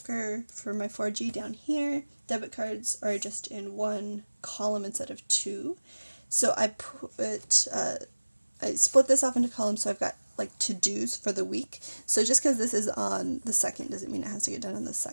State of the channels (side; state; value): both; inverted; correlation -1.00